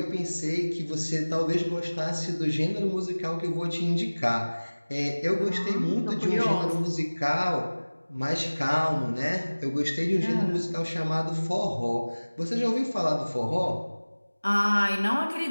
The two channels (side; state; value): both; inverted; correlation -1.00